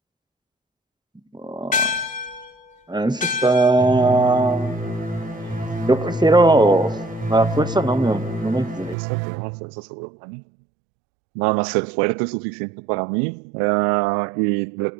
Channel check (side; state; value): left; drops out; at 9.0 s